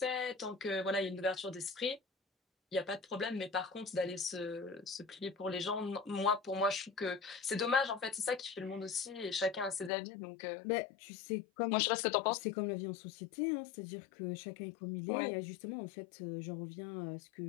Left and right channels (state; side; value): drops out; right; at 9.9 s